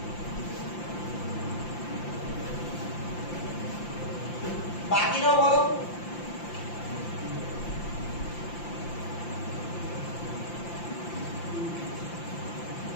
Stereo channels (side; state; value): right; late; 5.8 ms